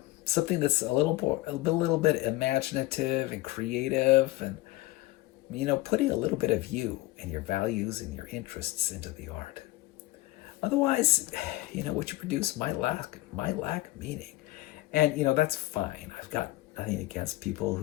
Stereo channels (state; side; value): quieter; right; 18.3 dB